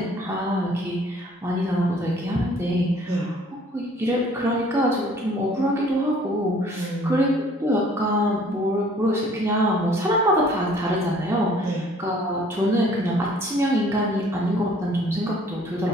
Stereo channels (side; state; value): both; normal; correlation 0.56